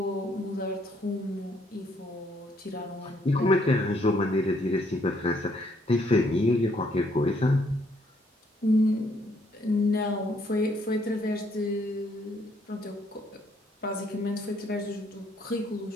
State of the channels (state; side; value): normal; both; correlation 0.69